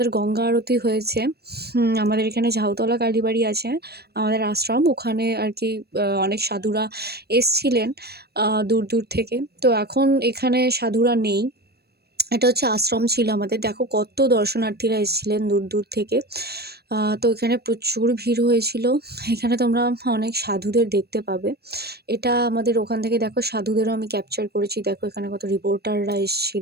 গঙ্গা আরতি হয়েছে। আমাদের এখানে ঝাউতলা কালীবাড়ি আছে, আমাদের আশ্রম, ওখানে আর কি অনেক সাধুরা এসছিলেন দূর দূর থেকে। তো এখন এখানে সাধুরা নেই, এটা হচ্ছে আশ্রম ছিল আমাদের। দেখো কত দর্শনার্থীরা এসেছিলেন দূর দূর থেকে। তো এখানে প্রচুর ভিড় হয়েছিল। এখানে তোমরা অনেক সাধুদের দেখতে পাবে। এটা আমাদের ওখান থেকে দেখো সাধুদেরও আমি ক্যাপচার করেছি। দেখো এখানে কত রিপোর্টাররা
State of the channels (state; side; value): late; left; 0.47 ms